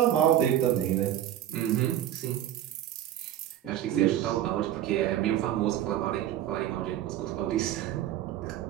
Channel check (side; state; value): left; quieter; 12.0 dB